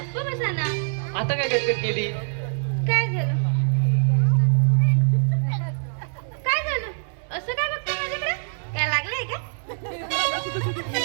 बसा ना. आता काय कटकट केली? काय झालं? काय झालं? असं काय बघताय माझ्याकडे? काय लागलंय का?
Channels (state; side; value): silent; left; 63 dB below the other